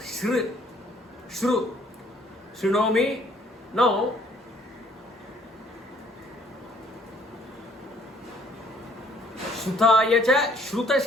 Shru. Shrunomi. Now Shrutaya cha, Shruta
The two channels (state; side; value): normal; both; correlation 0.61